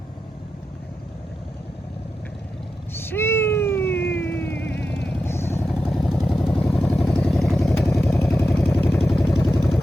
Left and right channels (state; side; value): normal; both; correlation 0.90